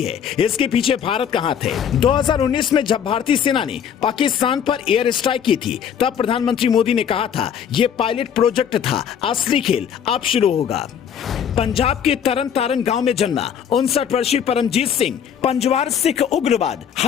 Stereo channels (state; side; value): quieter; right; 8.3 dB